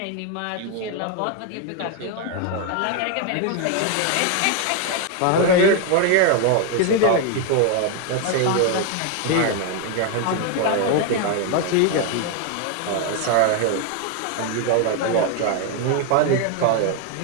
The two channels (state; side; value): different; both; correlation 0.01